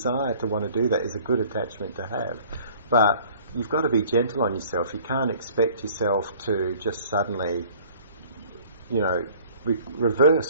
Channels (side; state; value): both; inverted; correlation -0.52